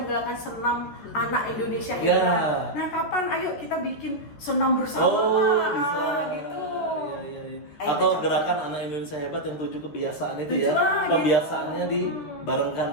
menggalakkan senam anak Indonesia Ya. hebat. Nah kapan ayo kita bikin senam bersama Pak? bisa. Nah, gitu. Iya, iya. Ayo, Atau kita gerakan anak Indonesia hebat yang 7 kebiasaan itu 7, ya. gitu. Pembiasaannya dibarengkan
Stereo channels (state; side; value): late; right; 14 ms